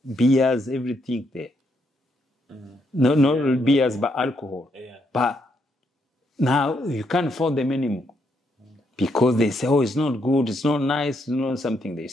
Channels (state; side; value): normal; both; correlation 0.76